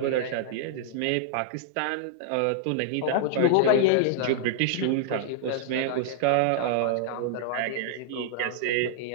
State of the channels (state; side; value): different; both; correlation -0.01